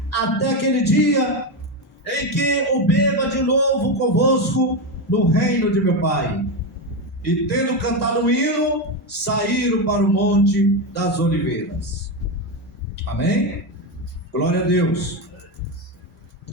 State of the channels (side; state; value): both; normal; correlation 0.11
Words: até aquele dia em que o beba de novo convosco no reino de meu Pai. E tendo cantado um hino, saíram para o monte das oliveiras. Amém? Glória a Deus.